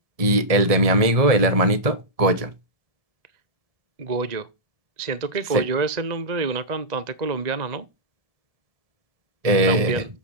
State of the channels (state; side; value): late; left; 1.7 ms